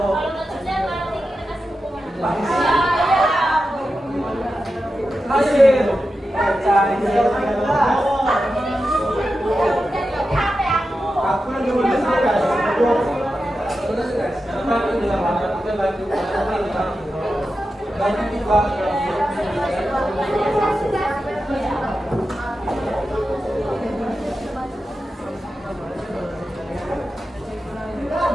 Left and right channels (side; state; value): both; normal; correlation 0.91